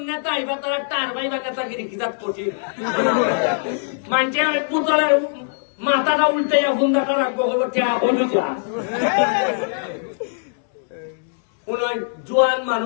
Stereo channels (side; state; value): right; silent; 65 dB below the other